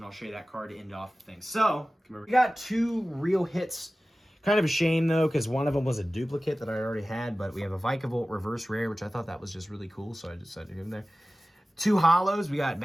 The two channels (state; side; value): normal; both; correlation 0.96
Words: I'll show you that card to end off the thing. So, we got 2 real hits. Kind of a shame, though, because one of them was a duplicate that I already had, but we have a Vikavolt reverse rare, which I thought that was just really cool, so I decided to give him there. 2 hollows. We got